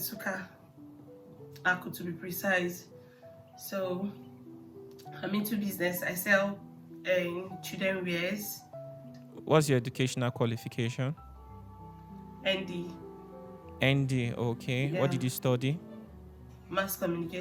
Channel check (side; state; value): both; identical; correlation 1.00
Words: Aku to be precise. So, I'm into business. I sell children wears, What's your educational qualification? ND, ND, okay. What yeah, did you study? mass